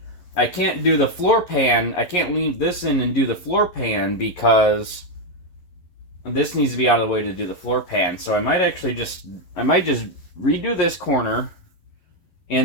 I can't do the floor pan. I can't leave this in and do the floor pan because this needs to be out of the way to do the floor pan. So I might actually just redo this corner,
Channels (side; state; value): right; late; 11 ms